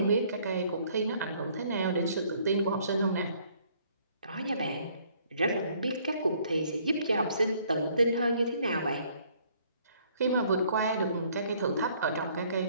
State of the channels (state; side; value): inverted; both; correlation -0.62